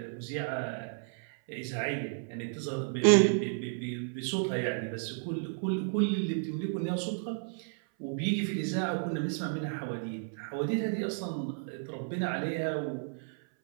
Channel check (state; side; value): silent; left; 56 dB below the other